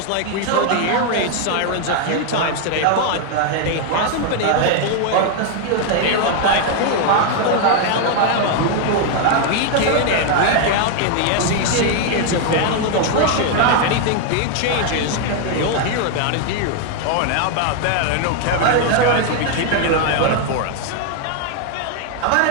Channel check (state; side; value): different; both; correlation 0.00